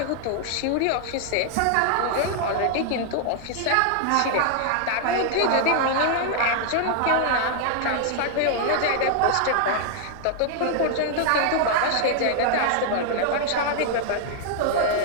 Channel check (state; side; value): different; both; correlation 0.00